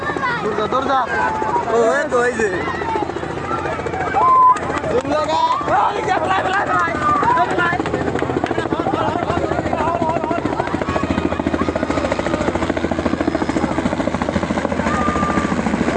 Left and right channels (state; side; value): identical; both; correlation 1.00